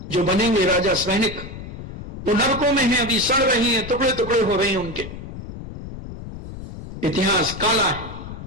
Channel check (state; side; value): noise; left; rumble, 11 dB below the sound